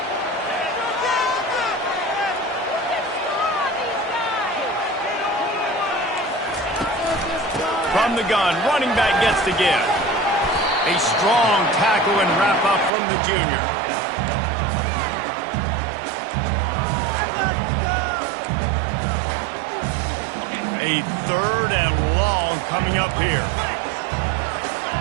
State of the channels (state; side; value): drops out; left; at 12.9 s